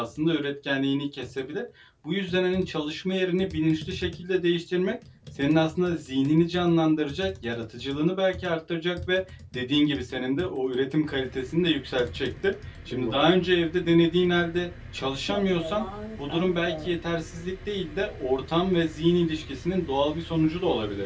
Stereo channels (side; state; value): both; identical; correlation 1.00